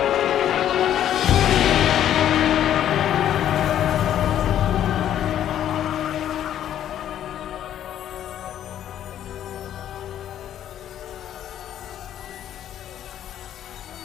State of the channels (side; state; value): right; quieter; 10.9 dB